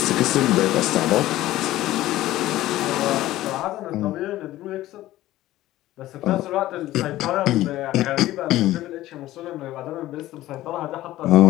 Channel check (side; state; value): right; quieter; 15.4 dB